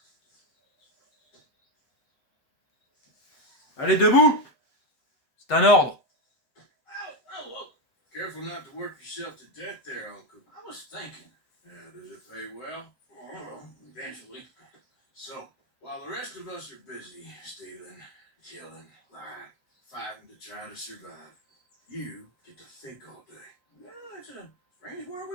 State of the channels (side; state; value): right; late; 7.7 ms